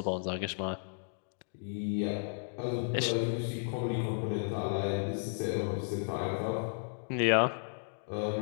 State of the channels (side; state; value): right; silent; digital silence